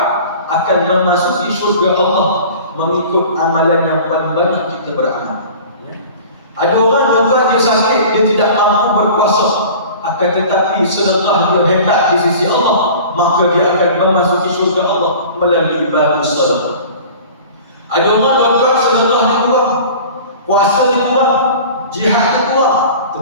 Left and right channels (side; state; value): both; inverted; correlation -0.41